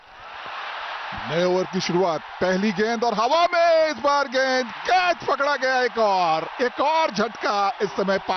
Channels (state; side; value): identical; both; correlation 1.00